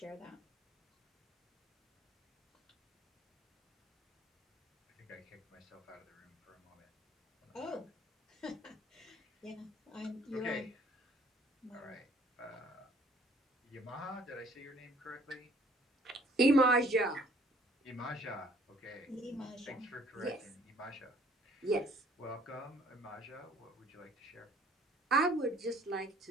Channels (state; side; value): normal; both; correlation 0.59